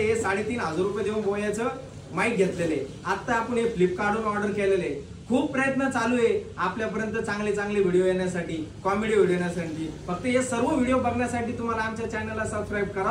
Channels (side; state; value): both; identical; correlation 1.00